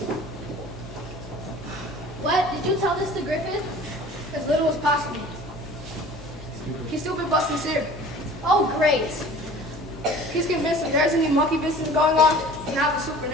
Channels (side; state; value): both; normal; correlation 0.45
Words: What? Did you tell this to Griffith? As little as possible. He's stupid but sincere. Oh, great. He's convinced if there's any monkey business going on, it's not the